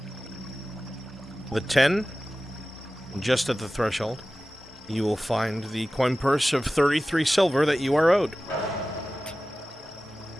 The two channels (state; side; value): normal; both; correlation 0.96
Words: The 10, just at the threshold, you will find the coin purse of 33 silver that you are owed.